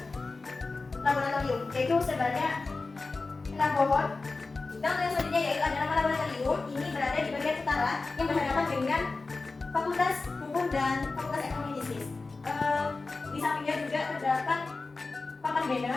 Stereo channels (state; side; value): quieter; right; 3.7 dB